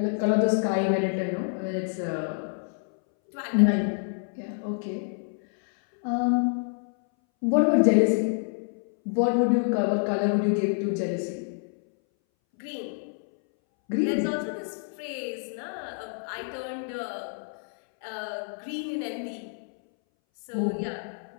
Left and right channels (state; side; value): silent; right; 60 dB below the other